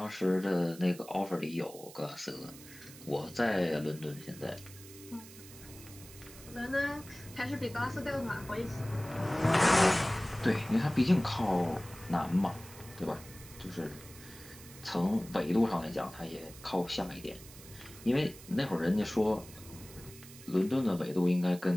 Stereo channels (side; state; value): right; noise; hiss, 18 dB below the sound